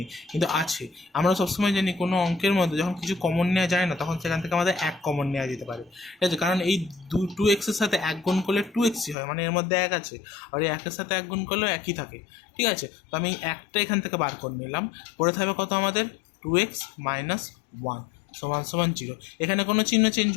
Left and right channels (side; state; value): right; drops out; at 9.2 s